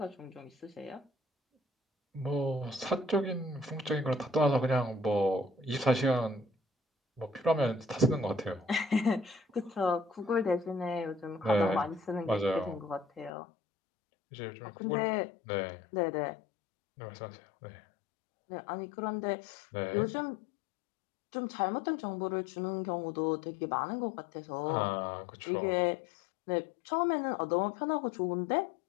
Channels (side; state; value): right; drops out; at 13.3 s